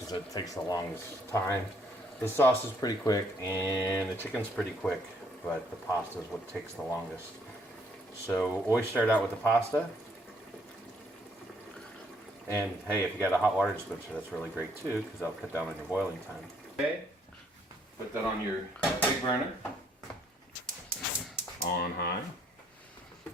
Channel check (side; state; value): both; normal; correlation 0.67